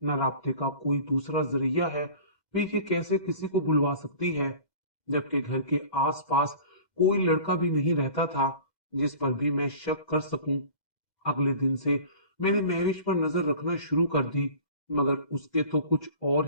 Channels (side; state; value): right; late; 2.0 ms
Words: न राब्ते का कोई दूसरा जरिया है। वे ये कैसे किसी को बुलवा सकती है, जबकि घर के आसपास कोई लड़का भी नहीं रहता था जिस पर भी मैं शक कर सकूं। अगले दिन से मैंने महविश पर नजर रखना शुरू कर दी, मगर उसके तो कुछ और